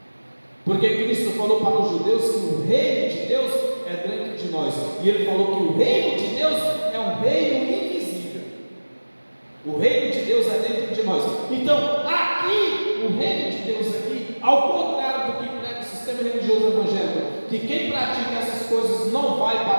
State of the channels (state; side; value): inverted; both; correlation -1.00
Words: Porque Cristo falou para os judeus que o reino de Deus é dentro de nós. E ele falou que o reino de Deus é um reino invisível. O reino de Deus é dentro de nós. Então, aqui, o reino de Deus aqui, ao contrário do que prega o sistema religioso evangélico, que quem pratica essas coisas não vai